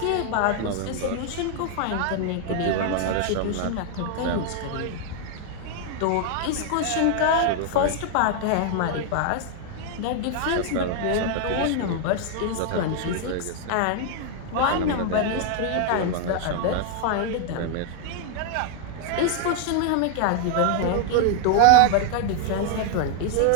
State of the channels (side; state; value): both; different; correlation 0.00